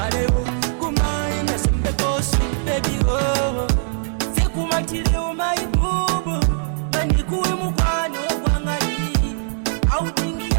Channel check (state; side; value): silent; left; 65 dB below the other